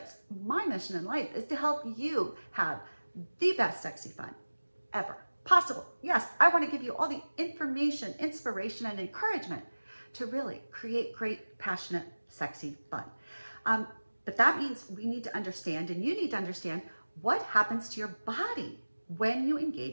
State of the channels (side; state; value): both; inverted; correlation -1.00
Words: My mission in life is to help you have the best sexy fun ever possible. Yes, I want to give you all the information, inspiration, and encouragement to really create great, passionate, sexy fun. But that means we need to understand, and you need to understand, what happens to your body when you